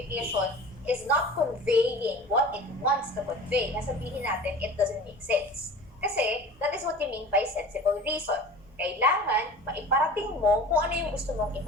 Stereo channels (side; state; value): both; normal; correlation 0.39